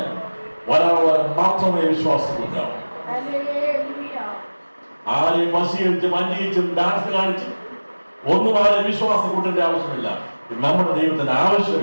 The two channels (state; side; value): inverted; both; correlation -1.00